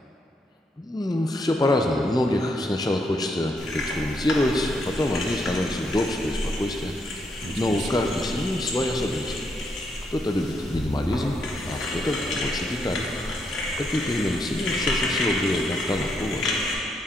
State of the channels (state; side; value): normal; both; correlation 0.77